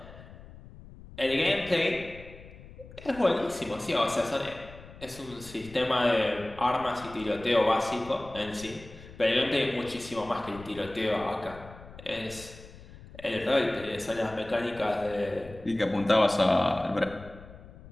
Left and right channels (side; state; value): left; noise; rumble, 18 dB below the sound